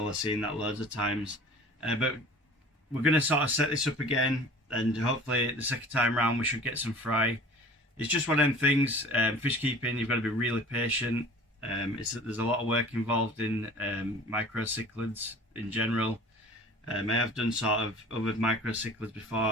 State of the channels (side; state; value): both; normal; correlation 0.44